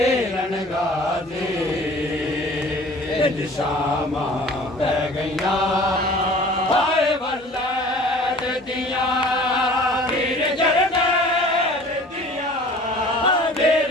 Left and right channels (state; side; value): normal; both; correlation 0.47